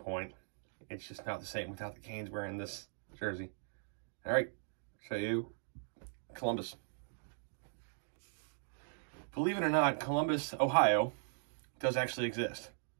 It's just not the same without the Canes wearing this jersey. All right, show you Columbus. Believe it or not, Columbus, Ohio, does actually exist.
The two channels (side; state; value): left; silent; digital silence